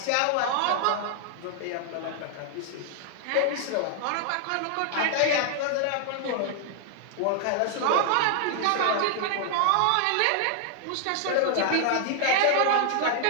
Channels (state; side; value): different; both; correlation 0.00